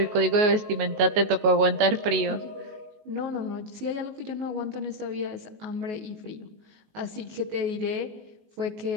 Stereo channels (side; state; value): left; late; 19 ms